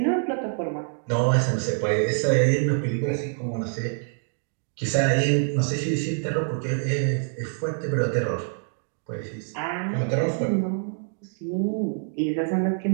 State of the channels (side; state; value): left; silent; digital silence